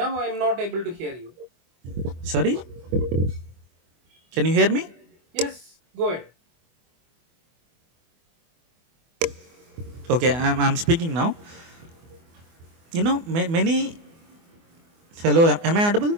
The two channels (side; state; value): left; late; 24 ms